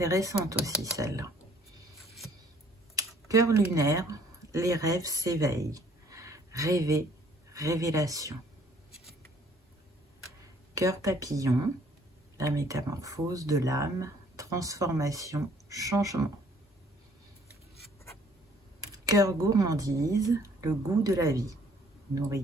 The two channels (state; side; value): normal; both; correlation 0.60